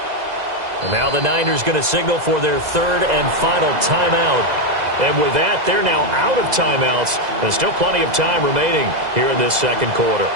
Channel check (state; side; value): late; left; 2.0 ms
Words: Now the Niners going to signal for their 3rd and final timeout. And with that, they're now out of timeouts. There's still plenty of time remaining here in this second quarter.